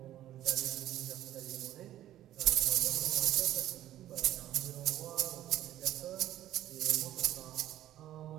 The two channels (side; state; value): left; quieter; 13.1 dB